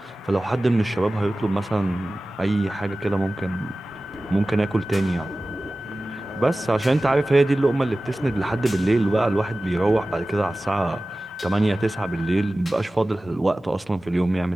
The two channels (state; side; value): normal; both; correlation 0.97